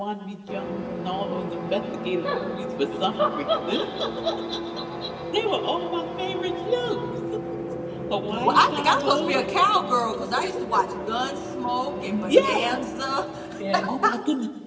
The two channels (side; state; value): both; identical; correlation 1.00